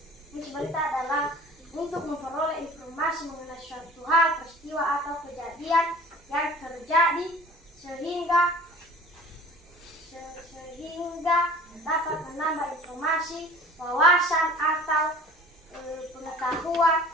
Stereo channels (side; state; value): both; normal; correlation 0.45